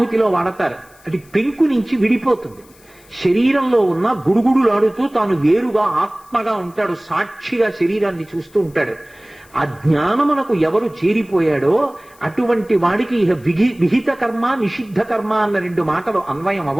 వాడతారు. అది పెంకు నుంచి విడిపోతుంది. శరీరంలో ఉన్న గుడుగుడులాడుతూ తాను వేరుగా ఆత్మగా ఉంటాడు. సాక్షిగా శరీరాన్ని చూస్తూ ఉంటాడు. ఆ జ్ఞానమునకు ఎవరు చేరిపోయాడో అటువంటి వాడికి ఇహ విహిత కర్మ నిషిద్ధ కర్మ అన్న 2 మాటలు అన్వయం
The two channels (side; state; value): left; noise; hiss, 28 dB below the sound